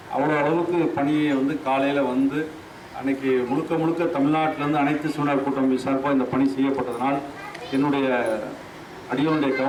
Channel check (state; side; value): identical; both; correlation 1.00